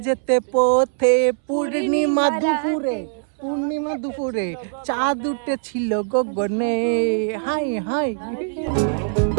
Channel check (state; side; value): silent; left; 65 dB below the other